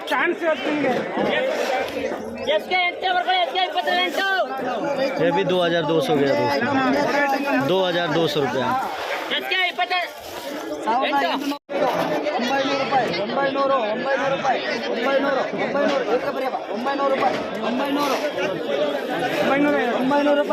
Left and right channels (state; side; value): identical; both; correlation 1.00